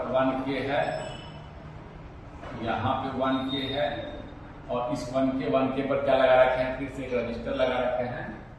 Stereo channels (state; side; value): identical; both; correlation 1.00